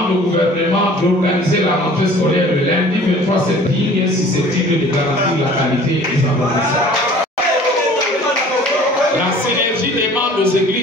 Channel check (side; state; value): both; normal; correlation 0.49